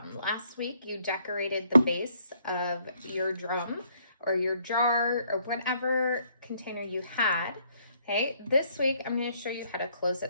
Last week you decorated the base of your drum or your jar or whatever container you had. Okay, this week I'm going to show you how to close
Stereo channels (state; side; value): inverted; both; correlation -0.67